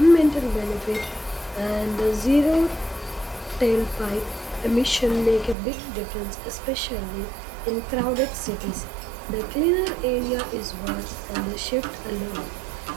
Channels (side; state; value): left; drops out; at 5.6 s